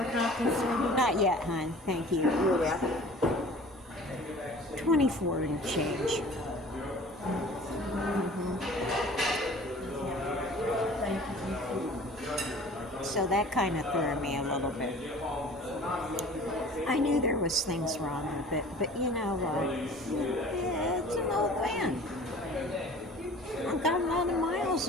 copies? Not yet, hon. Thank you. 24 and change. So that kind of threw me a little bit. I knew there was things wrong with it, but it's an old van. I've got a lot of miles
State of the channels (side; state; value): both; normal; correlation 0.46